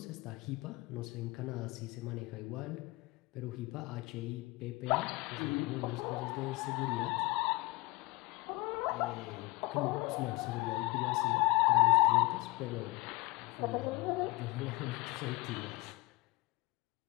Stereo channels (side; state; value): right; quieter; 23.3 dB